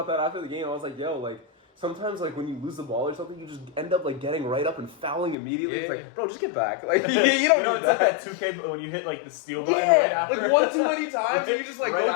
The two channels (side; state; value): right; drops out; at 5.4 s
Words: that after the game. I was like, yo, like, sometimes like when you lose the ball or something, you just end up like getting right up and fouling immediately. Yeah. It's like, bro, just get back. Like you don't. It's like that 2K when you hit like the steal button right after. Like one too many times, and you just like right go